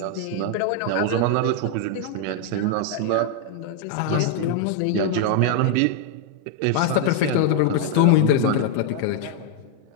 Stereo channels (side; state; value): both; different; correlation 0.00